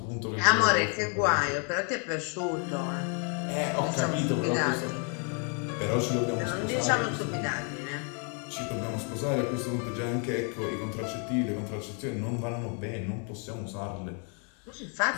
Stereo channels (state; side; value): quieter; right; 38.6 dB